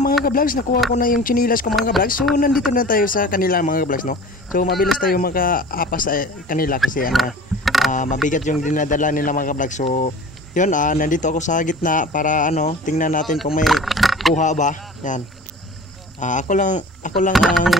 mga ka-vlogs, nakuha ko na yung chinilas ko mga ka-vlogs. So nandito na tayo sa kanila mga ka-vlogs, no? So mabilis tayo maka-apas sa kanila kasi mabigat yung dinadala nila mga ka-vlogs. So yun, nandito ako sa gitna para tingnan natin kung may kuha ba. Yan. Ako lang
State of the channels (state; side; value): normal; both; correlation 0.41